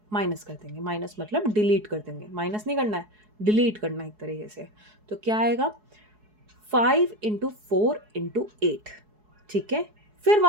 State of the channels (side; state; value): left; late; 4.7 ms